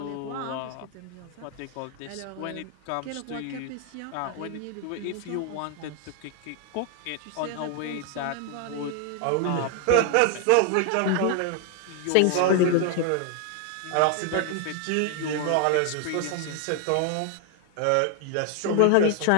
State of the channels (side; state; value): both; different; correlation 0.00